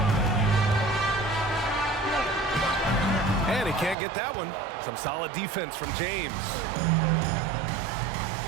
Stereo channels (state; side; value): drops out; left; at 4.0 s